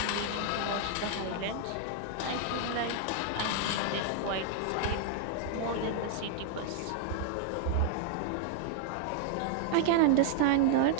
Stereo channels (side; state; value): both; different; correlation -0.01